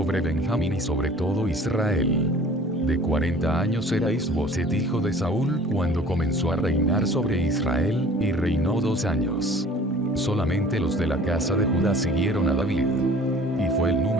Benjamín y sobre todo Israel. De 40 años era Is-Boset hijo de Saúl cuando comenzó a reinar sobre Israel, y reinó 2 años. Solamente los de la casa de Judá siguieron a David. Y fue el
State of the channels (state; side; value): normal; both; correlation 0.48